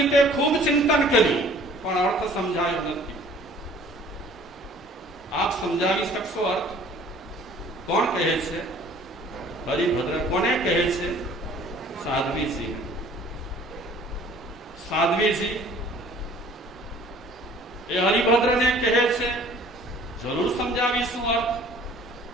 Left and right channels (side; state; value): both; normal; correlation 0.52